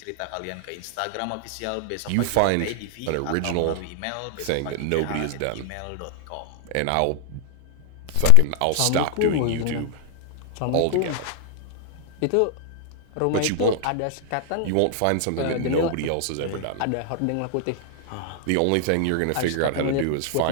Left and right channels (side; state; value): both; different; correlation 0.00